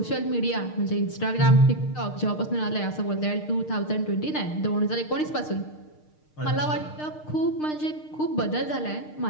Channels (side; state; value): right; late; 6.6 ms